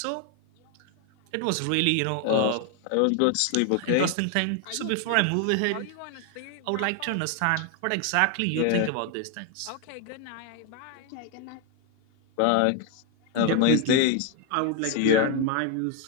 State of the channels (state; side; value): different; both; correlation 0.01